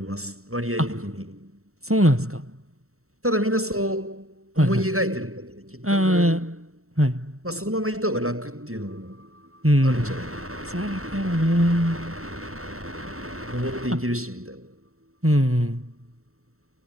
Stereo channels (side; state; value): left; late; 0.63 ms